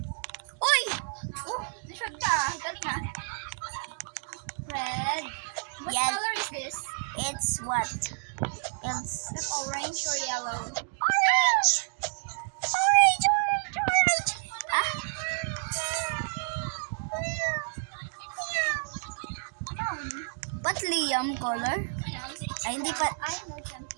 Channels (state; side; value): silent; left; digital silence